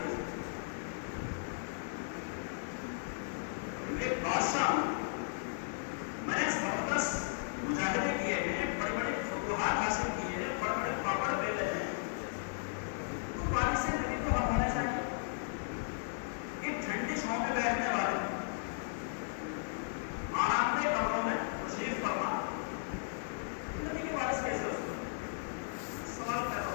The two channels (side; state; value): right; silent; digital silence